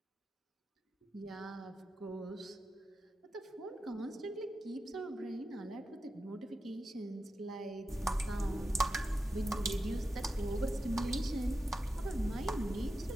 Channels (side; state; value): both; normal; correlation 0.90